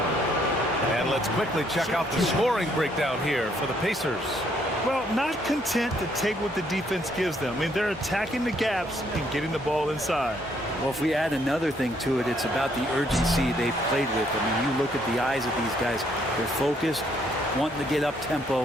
And let's quickly check out the scoring breakdown here for the Pacers. Well, not content to take what the defense gives them. I mean, they're attacking the gaps and getting the ball inside. Well, if we add another thing to it, it's about the urgency they've played with. I mean, you look at the eyes of these guys. They're focused, wanting to get up tempo,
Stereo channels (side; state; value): both; normal; correlation 0.69